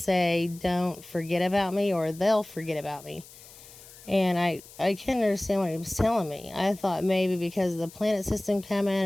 "Don't forget about me, or they'll forget about me." And I couldn't understand what he was telling me. I thought maybe because of the planet system coming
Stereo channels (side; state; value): left; noise; hiss, 20 dB below the sound